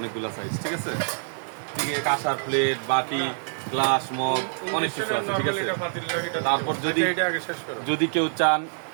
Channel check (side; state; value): left; silent; digital silence